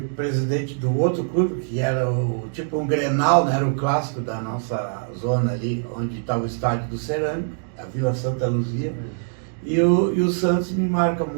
presidente do outro clube, que era tipo um Grenal, né? Era o clássico da nossa zona ali, onde estava o estádio do Cerâmico, a Vila Santa Luzia. E o Santos me marca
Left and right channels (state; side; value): silent; left; digital silence